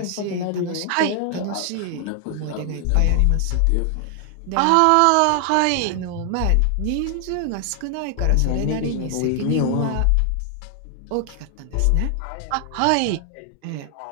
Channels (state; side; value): different; both; correlation 0.00